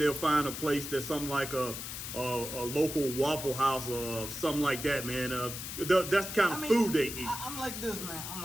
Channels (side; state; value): left; noise; hiss, 7 dB below the sound